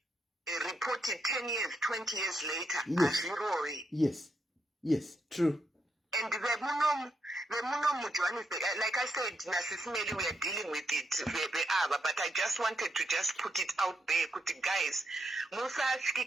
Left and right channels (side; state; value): both; normal; correlation 0.81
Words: report it 10 years, 20 years later. Yes. Yes, true. And the Johannesburg, like I said, SIS MELLY, we are dealing with it, but I just wanted to just put it out there, guys, because